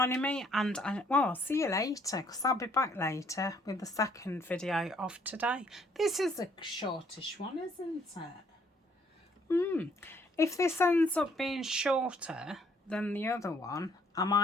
me, and I'll see you later, because I'll be back later with the second video of today. This is a shortish one, isn't it? If this ends up being shorter than the other one, I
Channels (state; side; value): normal; both; correlation 0.65